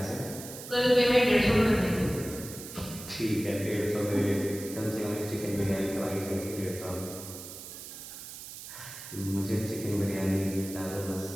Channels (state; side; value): noise; right; hiss, 12 dB below the sound